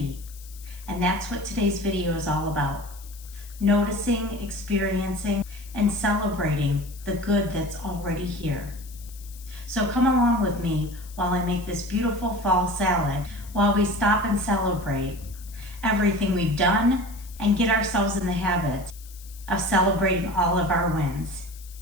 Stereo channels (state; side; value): noise; left; hiss, 20 dB below the sound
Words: And that's what today's video is all about. Noticing, experiencing, and celebrating the good that's already here. So come along with me while I make this beautiful fall salad, while we stop and celebrate everything we've done and get ourselves in the habit of celebrating all of our wins,